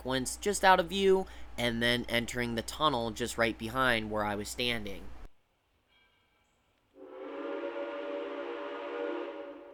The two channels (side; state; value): both; identical; correlation 1.00